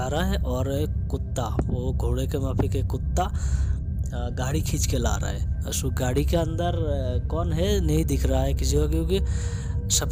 रहा है और एक कुत्ता, वो घोड़े के माफी के कुत्ता गाड़ी खींच के ला रहा है। उस गाड़ी के अंदर कौन है नहीं दिख रहा है किसी को, क्योंकि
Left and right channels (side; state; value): both; identical; correlation 1.00